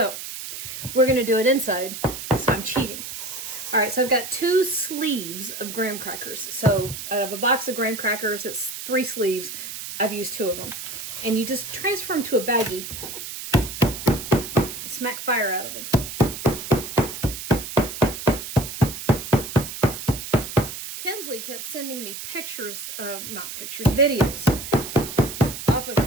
we're gonna do it inside, so I'm cheating. All right, so I've got 2 sleeves of graham crackers. So out of a box of graham crackers, it's 3 sleeves. I've used 2 of them. And you just transfer them to a baggie and smack fire out of them. Kinsley kept sending me pictures, not pictures, videos off of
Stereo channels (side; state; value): right; noise; hiss, 8 dB below the sound